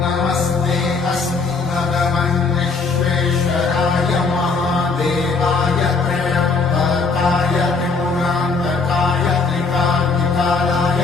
नमस्ते अस्तु भगवन् विश्वेश्वराय महादेवाय त्र्यम्बकाय त्रिपुरान्तकाय त्रिकाग्निकालाय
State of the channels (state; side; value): quieter; right; 4.4 dB